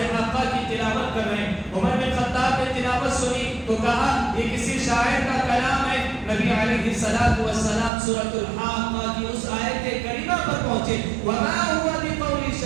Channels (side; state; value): left; drops out; at 7.9 s